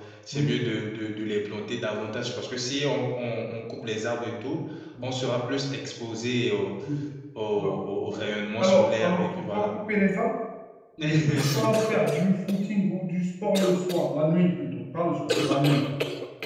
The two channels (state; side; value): identical; both; correlation 1.00